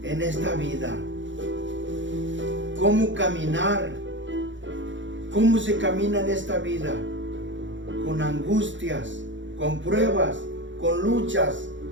en esta vida, cómo caminar, cómo se camina en esta vida, con angustias, con pruebas, con luchas.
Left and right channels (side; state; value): left; late; 0.55 ms